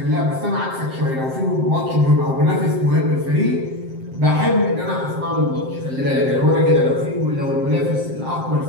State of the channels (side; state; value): left; late; 7.6 ms